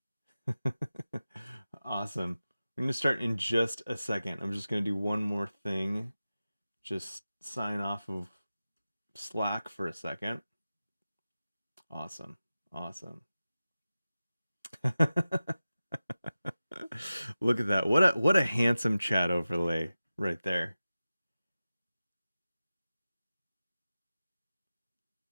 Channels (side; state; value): both; inverted; correlation -0.95